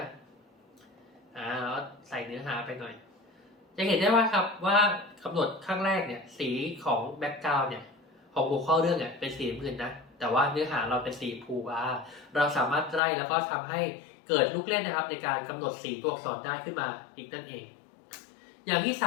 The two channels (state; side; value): drops out; right; at 13.0 s